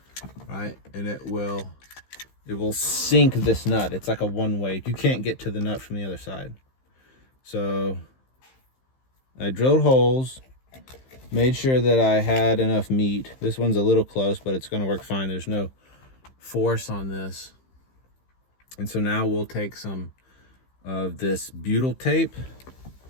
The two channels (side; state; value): right; late; 15 ms